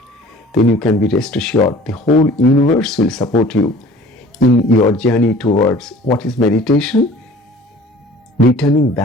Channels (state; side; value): normal; both; correlation 0.47